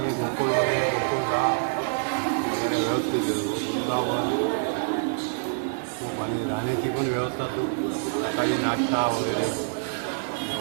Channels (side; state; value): left; silent; 60 dB below the other